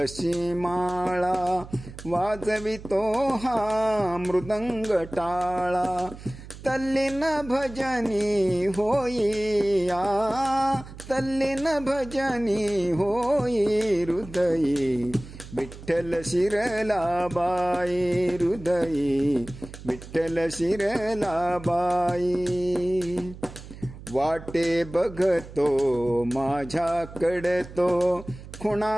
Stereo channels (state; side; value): noise; right; hum, 15 dB below the sound